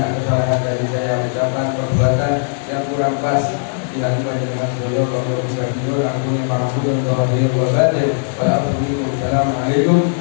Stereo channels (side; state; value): right; silent; digital silence